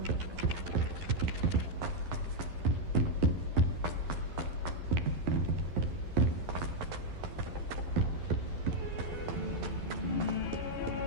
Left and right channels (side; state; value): left; late; 11 ms